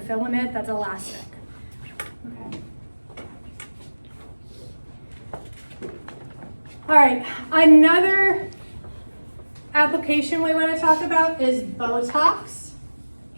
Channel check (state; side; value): inverted; both; correlation -1.00